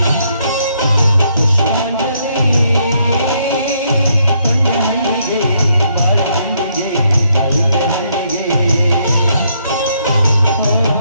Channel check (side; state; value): both; inverted; correlation -0.73